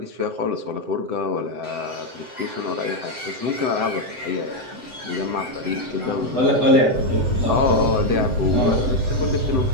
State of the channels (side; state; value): left; late; 7.8 ms